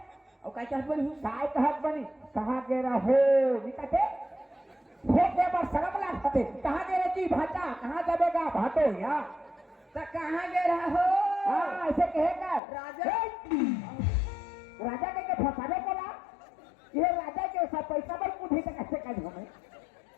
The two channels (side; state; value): right; drops out; at 12.6 s